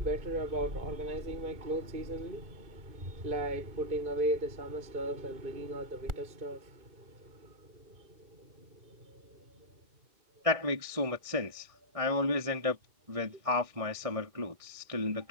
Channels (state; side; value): late; left; 1.6 ms